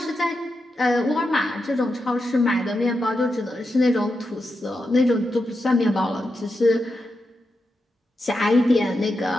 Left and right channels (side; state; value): both; normal; correlation 0.87